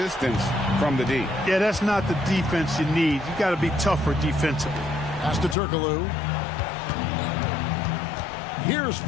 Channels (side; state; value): right; drops out; at 5.6 s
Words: from the D. Yeah, that's not the defense you need. You got to be tougher defensively. Pass to Turkoglu. Here's